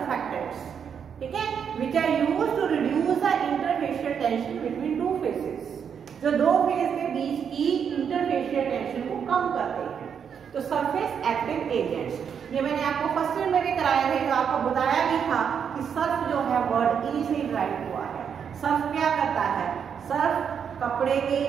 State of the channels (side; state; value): left; quieter; 7.4 dB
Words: ठीक है, which are used to reduce the interfacial tension between two phases, जो दो फेस के बीच की इंटरफेशियल टेंशन को कम करते हैं। तो सरफेस एक्टिव एजेंट्स, ये मैंने आपको फर्स्ट ईयर में भी कराया है, तो आपको बताया भी था कि सर्फ जो है वर्ड ई से ड्राइव हुआ है। सर्फ क्या करता है, सर्फ कपड़े के